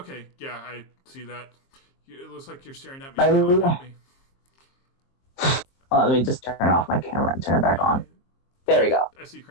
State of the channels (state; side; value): late; right; 23 ms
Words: yeah, I see that. It looks like you're staring at me. At me. Let me just turn off my camera and turn it back on. There we go. I see